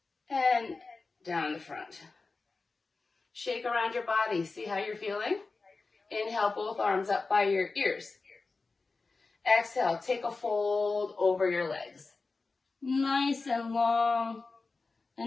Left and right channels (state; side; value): quieter; right; 3.9 dB